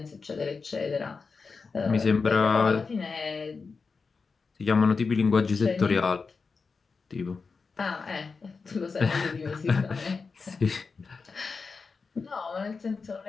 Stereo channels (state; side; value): quieter; right; 4.7 dB